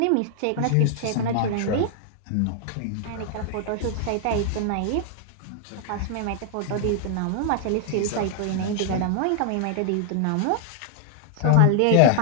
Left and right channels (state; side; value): different; both; correlation 0.00